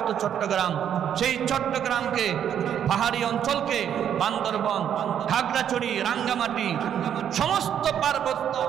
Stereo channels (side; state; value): left; quieter; 9.3 dB